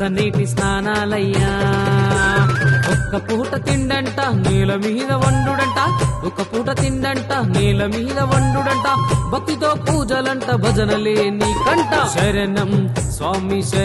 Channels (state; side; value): identical; both; correlation 1.00